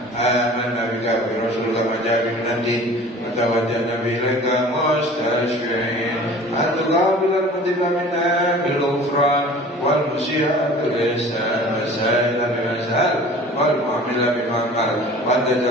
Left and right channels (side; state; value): both; normal; correlation 0.44